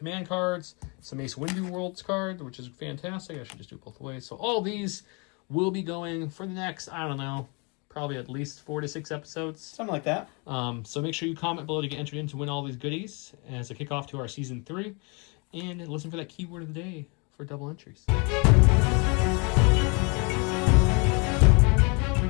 cards, some Mace Windu Worlds card, which is fantastic. I should just do it both ways. So all these will be going for the next, I don't know, probably at least 4 to 6 episodes. Something like that. So make sure you comment below to get entered in to win all these goodies as a kickoff to our Season 3. And listen for that keyword of the day for double entries.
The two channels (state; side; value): quieter; right; 31.9 dB